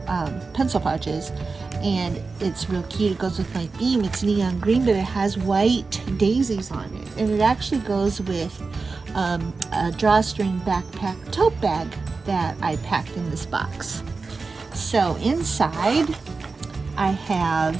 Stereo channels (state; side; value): quieter; left; 4.2 dB